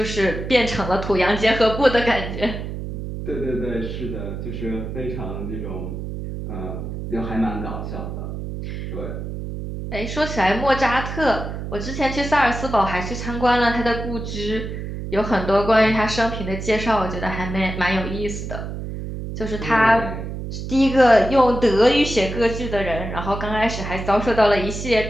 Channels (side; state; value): right; noise; hum, 6 dB below the sound